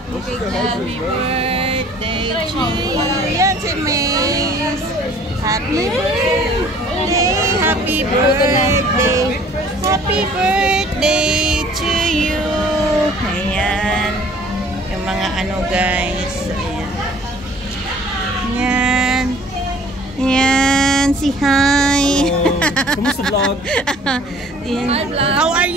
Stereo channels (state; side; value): normal; both; correlation 0.53